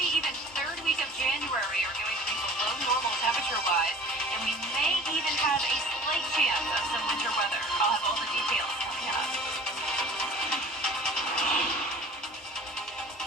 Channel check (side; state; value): both; normal; correlation 0.46